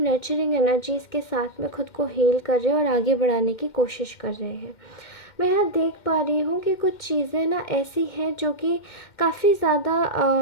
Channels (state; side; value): late; right; 2.1 ms